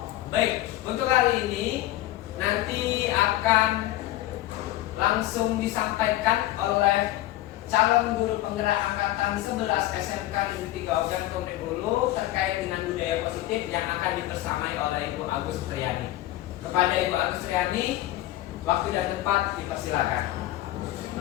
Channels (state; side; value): quieter; right; 15.5 dB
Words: Baik, untuk hari ini nanti akan langsung disampaikan oleh calon guru penggerak angkatan 11 SMK Negeri 3 Ogan Komplek Hulu terkait dengan budaya positif yang akan dibersamai oleh Ibu Agus Triani. Kepada Ibu Agus Triani, waktu dan tempat dipersilakan.